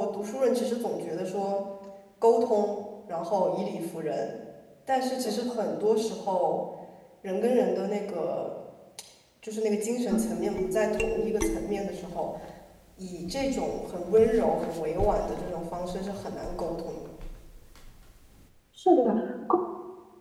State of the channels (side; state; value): both; identical; correlation 1.00